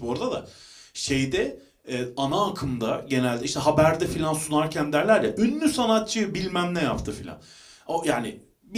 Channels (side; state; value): both; identical; correlation 1.00